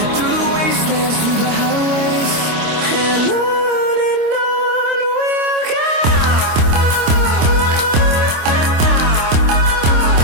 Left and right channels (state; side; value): late; left; 25 ms